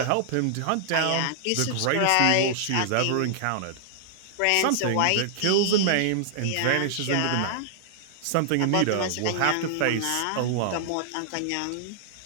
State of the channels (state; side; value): different; both; correlation -0.01